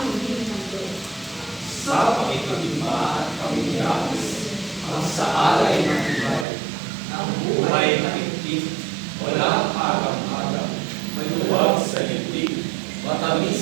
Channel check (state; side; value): drops out; left; at 6.5 s